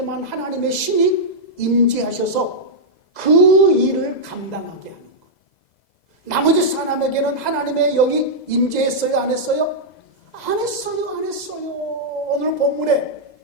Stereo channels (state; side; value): late; right; 2.0 ms